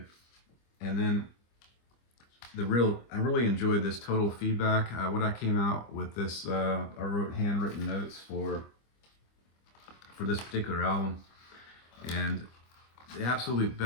And then I really enjoyed this Total Feedback. What I came out with this, I wrote handwritten notes for this particular album, and the absolute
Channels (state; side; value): late; right; 25 ms